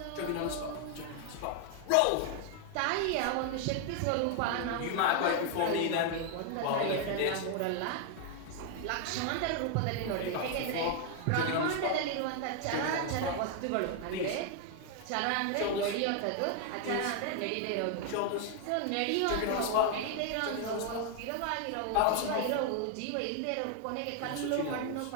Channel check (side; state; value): both; different; correlation 0.00